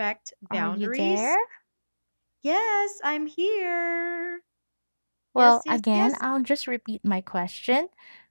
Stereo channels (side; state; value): both; inverted; correlation -1.00